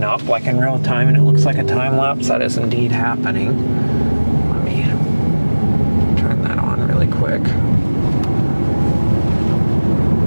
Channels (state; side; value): inverted; both; correlation -1.00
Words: up like in real time, and it looks like a time lapse. That is indeed happening. Let me turn that on really quick.